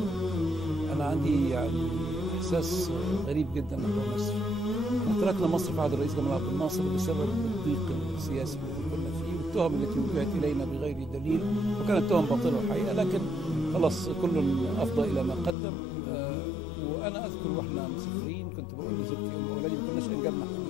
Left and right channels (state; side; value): drops out; right; at 15.6 s